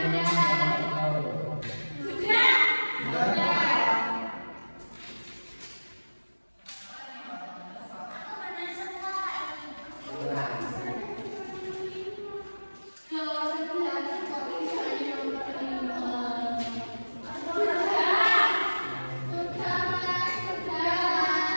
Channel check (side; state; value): both; inverted; correlation -1.00